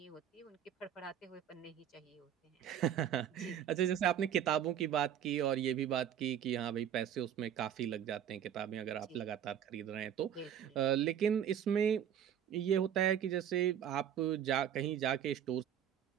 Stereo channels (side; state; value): left; quieter; 9.6 dB